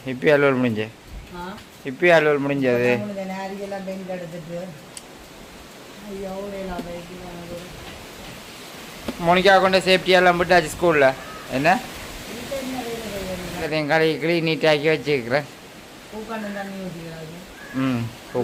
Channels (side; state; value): both; identical; correlation 1.00